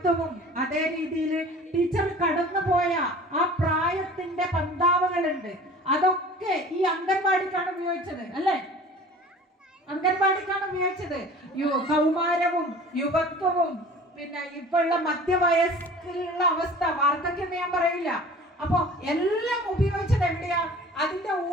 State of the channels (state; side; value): normal; both; correlation 0.43